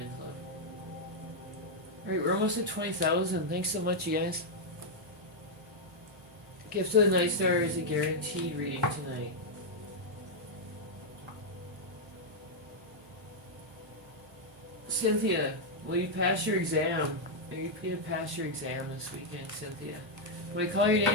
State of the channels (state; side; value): normal; both; correlation -0.03